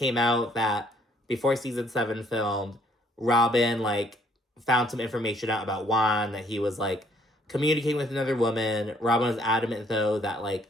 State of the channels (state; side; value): normal; both; correlation 0.64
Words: out that before Season 7 filmed, Robyn, found some information out about Juan, that he was, communicating with another woman. Robyn was adamant, though, that,